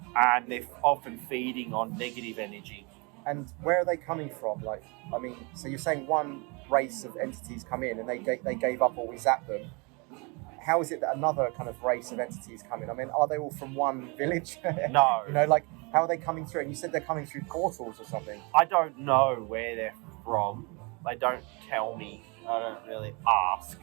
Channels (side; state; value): left; quieter; 30.2 dB